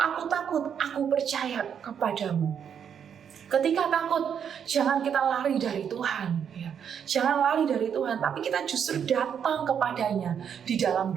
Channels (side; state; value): left; quieter; 8.0 dB